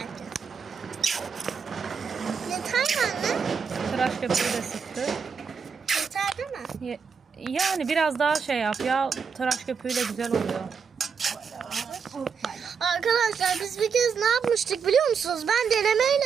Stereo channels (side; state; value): left; quieter; 6.1 dB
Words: Yeter mi anne? tıraş köpüğü de sıktı. Yeter değil mi? Yani biraz daha şey yap ya, tıraş köpüğüyle güzel oluyor. Arkadaşlar biz bir kez ne yapmıştık biliyor musunuz? Ben denemeyle